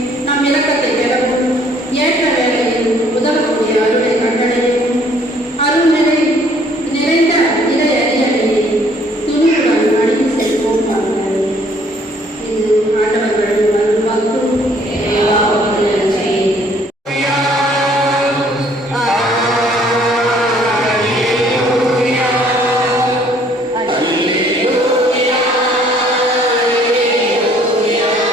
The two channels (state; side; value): normal; both; correlation 0.61